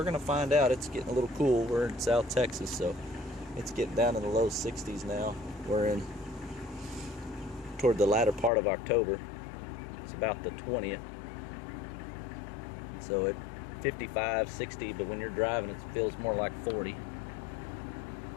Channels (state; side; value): drops out; right; at 8.5 s